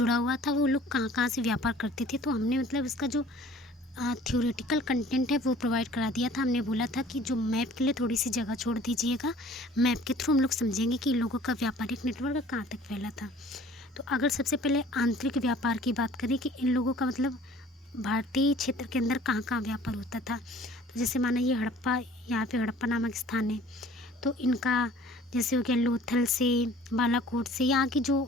हुआ था, वो लोग कहाँ कहाँ से व्यापार करते थे। तो हमने मतलब इसका जो थ्योरेटिकल कंटेंट है वो प्रोवाइड करा दिया था। हमने बोला था कि जो मैप के लिए थोड़ी सी जगह छोड़ दीजिएगा, मैप के थ्रू हम लोग समझेंगे कि इन लोगों का व्यापारिक नेटवर्क कहाँ तक फैला था। तो अगर सबसे पहले आंतरिक व्यापार की बात करें कि इन लोगों का मतलब भारतीय क्षेत्र के अंदर कहाँ कहाँ व्यापार होता था, तो जैसे माना ये हड़प्पा, यहाँ पे हड़प्पा नामक स्थान है, तो इनका जैसे हो गया लोथल से, बालाकोट से, यहाँ की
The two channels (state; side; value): normal; both; correlation 0.51